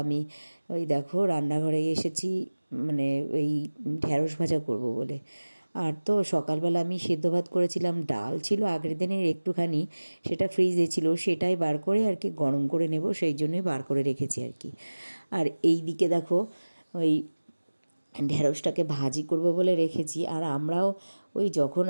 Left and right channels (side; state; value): both; inverted; correlation -1.00